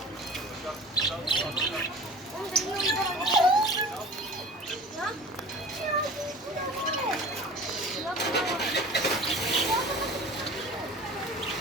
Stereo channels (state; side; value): normal; both; correlation 0.39